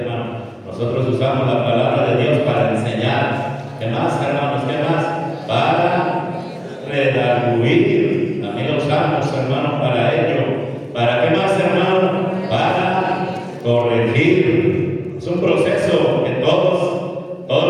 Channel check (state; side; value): identical; both; correlation 1.00